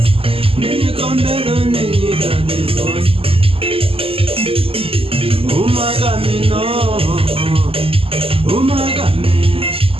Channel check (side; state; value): left; late; 0.27 ms